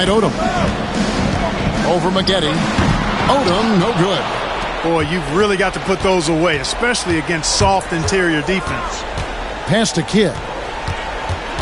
Odom. Over Maggette. Odom, no good. Boy, you've really got to put those away, especially against soft interior defense. Pass to Kidd.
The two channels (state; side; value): identical; both; correlation 1.00